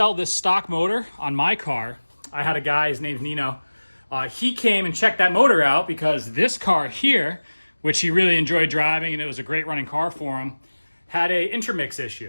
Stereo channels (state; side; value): inverted; both; correlation -1.00